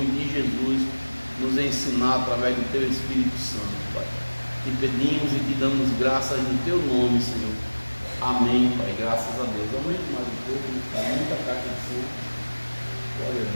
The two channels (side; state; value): both; inverted; correlation -1.00